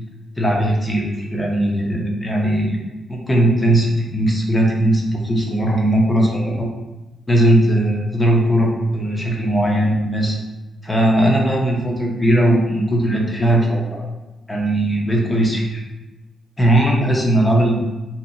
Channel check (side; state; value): both; normal; correlation 0.75